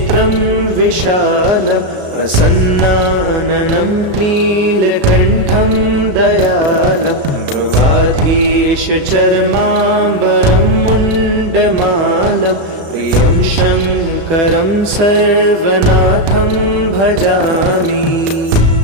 विशालं प्रसन्नाननं नीलकण्ठं दयालं मृगाधीशचर्माम्बरं मुण्डमालं प्रियं शङ्करं सर्वनाथं भजामि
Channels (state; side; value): late; left; 35 ms